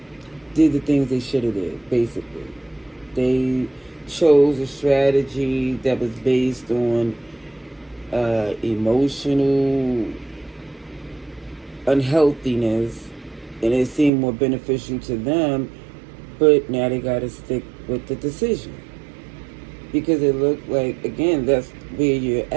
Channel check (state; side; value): drops out; left; at 14.1 s